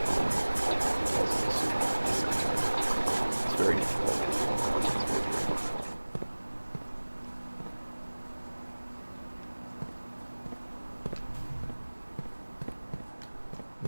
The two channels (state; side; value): inverted; both; correlation -1.00